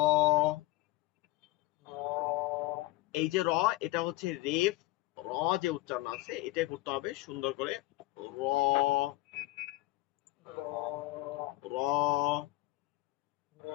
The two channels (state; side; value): quieter; right; 18.6 dB